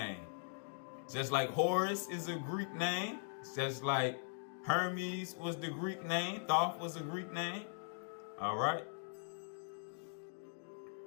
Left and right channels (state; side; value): silent; right; digital silence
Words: Just like Horus is a Greek name, just like Hermes was the Greek name, Thoth was a Greek name. Alright.